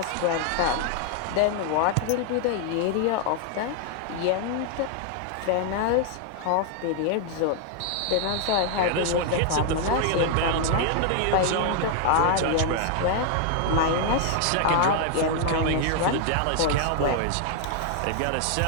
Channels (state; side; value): different; both; correlation 0.00